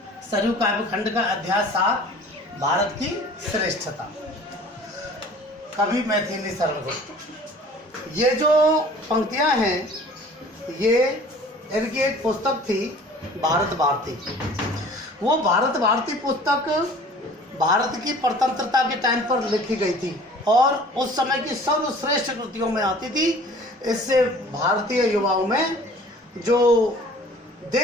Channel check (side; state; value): both; normal; correlation 0.48